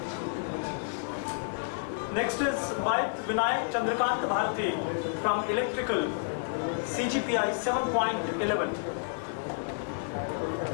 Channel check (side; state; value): right; silent; digital silence